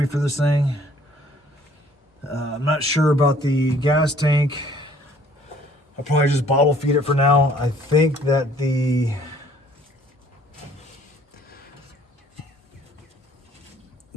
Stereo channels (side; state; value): both; normal; correlation 0.58